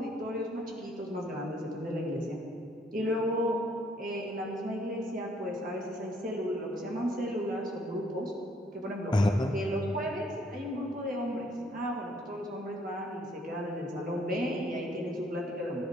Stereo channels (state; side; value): normal; both; correlation 0.66